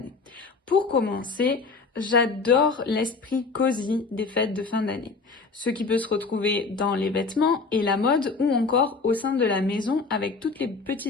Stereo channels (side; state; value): right; quieter; 4.3 dB